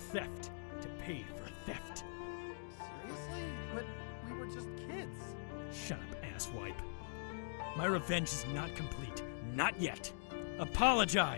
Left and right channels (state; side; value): silent; right; digital silence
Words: to pay for a theft. Seriously? But we were just kids. Shut up, asswipe. My revenge is not complete. Not yet.